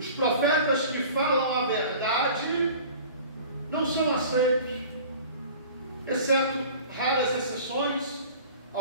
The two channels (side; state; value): both; inverted; correlation -0.43